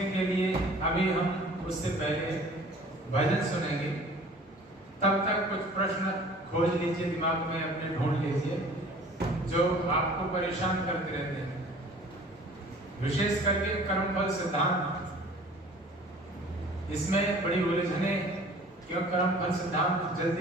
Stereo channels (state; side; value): normal; both; correlation 0.48